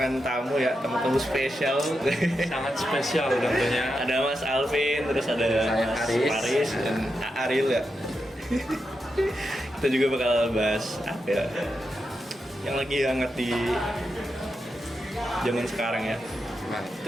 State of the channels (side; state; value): both; normal; correlation 0.87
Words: tamu ya, tamu spesial. Sangat spesial tentunya. Ada Mas Alvin, terus ada Saya Mas Faris. Faris dan Ariel ya. Kita juga bakal bahas apa ya? Yang lagi hangat di zaman sekarang ya. Nah,